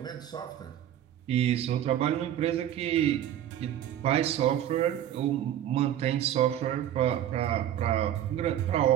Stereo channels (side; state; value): left; quieter; 11.3 dB